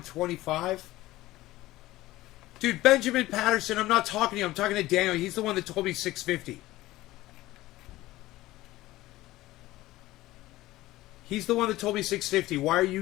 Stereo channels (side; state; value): right; quieter; 17.1 dB